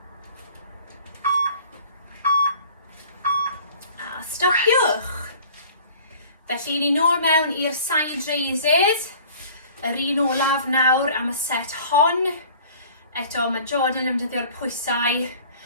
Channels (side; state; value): both; inverted; correlation -0.48